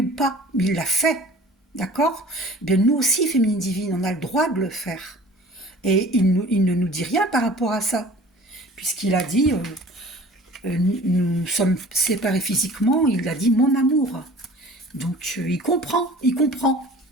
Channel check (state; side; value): normal; both; correlation 0.46